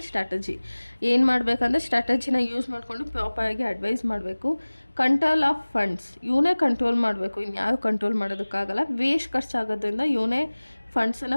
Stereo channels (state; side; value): inverted; both; correlation -1.00